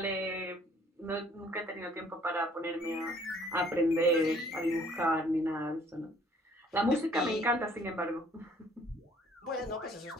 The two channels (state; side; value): normal; both; correlation 0.59